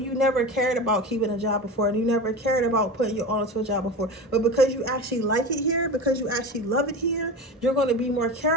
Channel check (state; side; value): normal; both; correlation 0.27